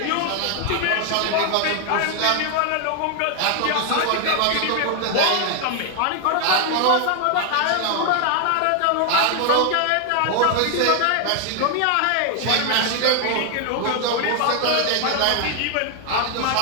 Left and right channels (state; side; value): different; both; correlation 0.00